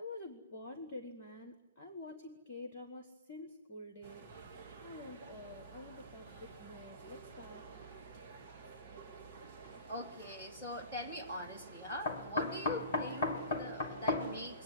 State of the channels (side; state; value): both; inverted; correlation -0.39